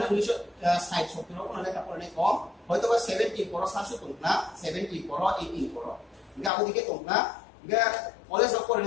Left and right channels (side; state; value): right; drops out; at 6.5 s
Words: 1960 70 কোন লেখা পড়লে কম হয়তো বা 70 পড়া শাসক তো না 70 পড়া 18 পড়া আবো দিকে তো না কলেজ করে